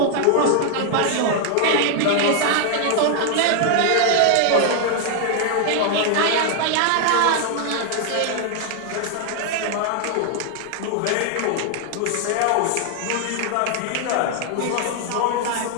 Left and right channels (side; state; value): both; different; correlation 0.00